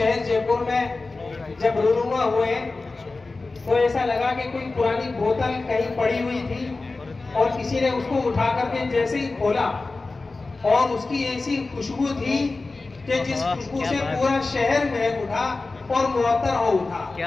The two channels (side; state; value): right; quieter; 3.5 dB